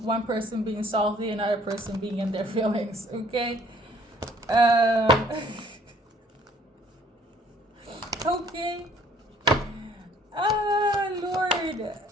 one person being salty, another person being in their feelings, okay? Okay. Ah, Lord.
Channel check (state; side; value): normal; both; correlation 0.59